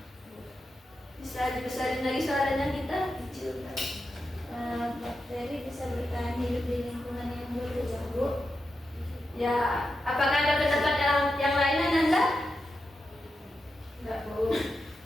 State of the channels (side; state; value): both; normal; correlation 0.88